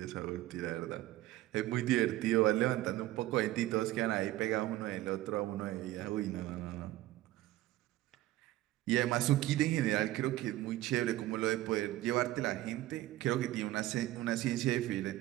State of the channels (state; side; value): quieter; left; 15.9 dB